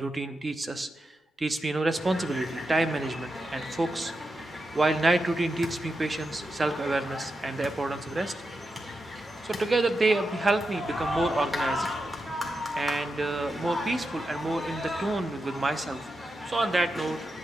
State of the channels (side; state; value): both; normal; correlation 0.88